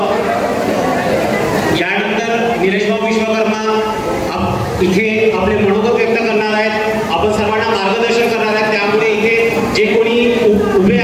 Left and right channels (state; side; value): identical; both; correlation 1.00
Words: यानंतर निलेशभाऊ विश्वकर्मा इथे आपले मनोगत व्यक्त करणार आहेत, आपण सर्वांना मार्गदर्शन करणार आहेत. त्यामुळे इथे जे कोणी उभे